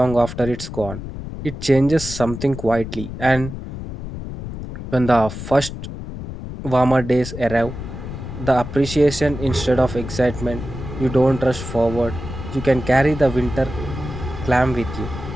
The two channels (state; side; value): noise; left; rumble, 9 dB below the sound